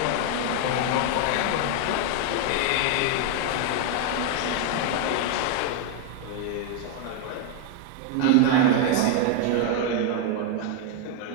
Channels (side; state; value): both; different; correlation 0.00